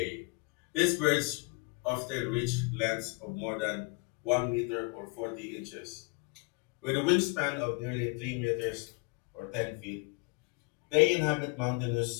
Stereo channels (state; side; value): quieter; right; 29.3 dB